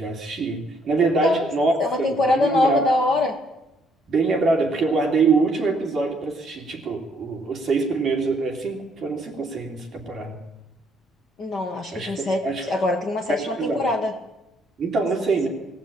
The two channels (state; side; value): normal; both; correlation 0.68